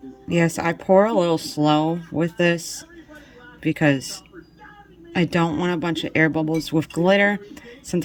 Yes, I pour a little slow with this because I don't want a bunch of air bubbles with glitter.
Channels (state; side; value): identical; both; correlation 1.00